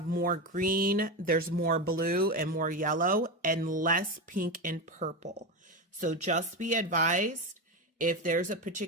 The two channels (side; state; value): both; normal; correlation 0.17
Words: more green, there's more blue and more yellow and less pink and purple. So just be advised, if there's a